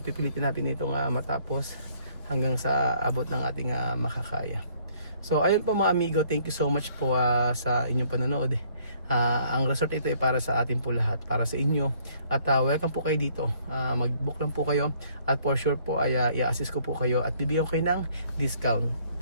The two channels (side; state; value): both; inverted; correlation -0.63